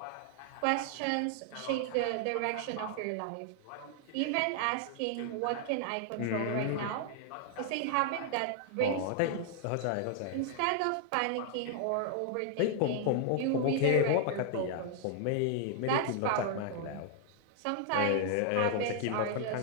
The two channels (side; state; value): both; different; correlation 0.00